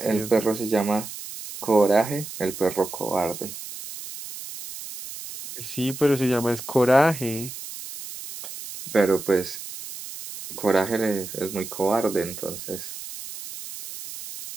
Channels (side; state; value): right; noise; hiss, 11 dB below the sound